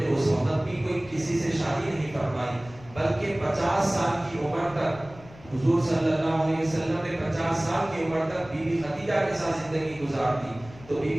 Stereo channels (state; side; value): noise; left; rumble, 20 dB below the sound